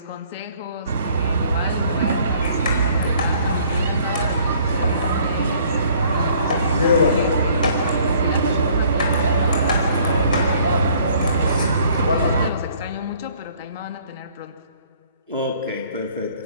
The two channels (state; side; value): inverted; both; correlation -0.59